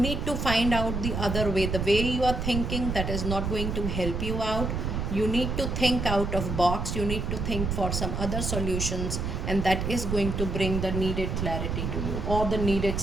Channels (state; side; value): noise; right; rumble, 2 dB below the sound